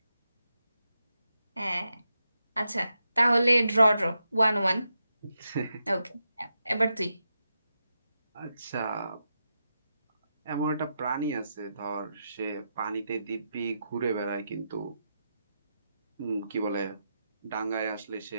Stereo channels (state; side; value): inverted; both; correlation -0.86